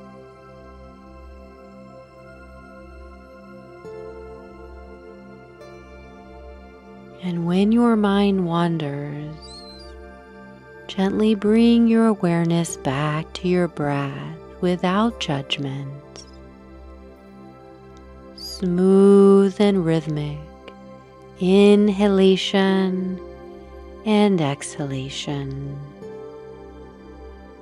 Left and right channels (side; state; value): both; identical; correlation 1.00